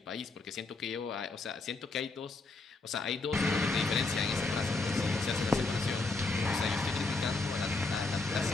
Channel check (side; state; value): right; quieter; 3.6 dB